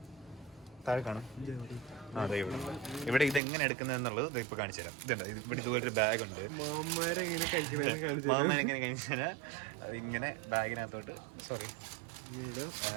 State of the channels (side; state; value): left; drops out; at 3.4 s